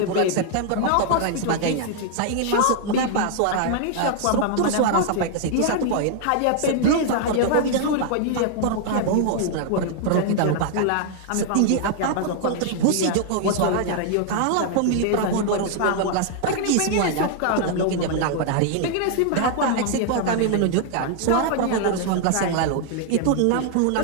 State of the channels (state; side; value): different; both; correlation 0.00